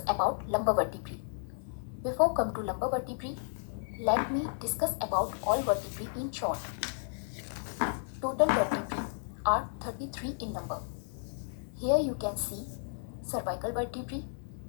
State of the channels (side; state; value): right; silent; digital silence